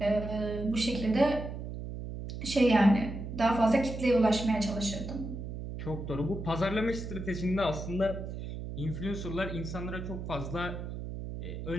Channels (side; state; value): right; noise; hum, 7 dB below the sound